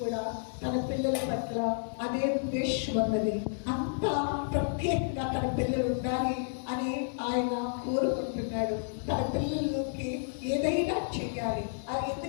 తన పిల్లల పట్ల అదే ఉద్దేశం ఉన్నది. అంత ప్రత్యేకంగా తన పిల్లలు ఉండాలి అని ఆయన కోరుకుంటున్నాడు. తన పిల్లలకి ఏదైనా చెయ్యాలి.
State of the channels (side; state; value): right; silent; digital silence